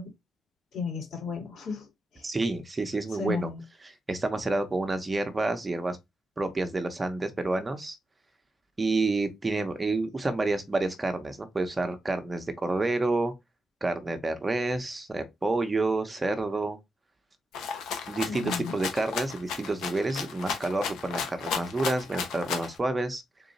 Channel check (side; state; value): both; normal; correlation 0.87